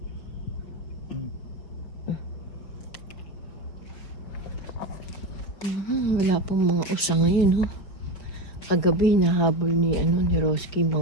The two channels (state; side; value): late; right; 5.3 ms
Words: Wala pong mga usa ngayon, ho. Kagabi nahabol ni Roski